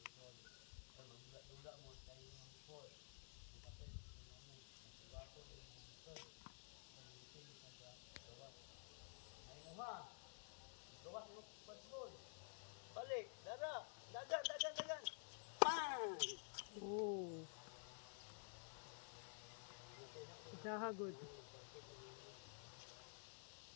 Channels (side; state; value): right; silent; digital silence